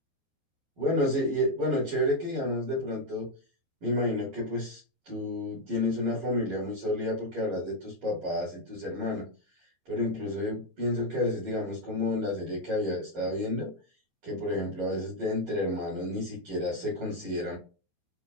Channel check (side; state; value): left; late; 11 ms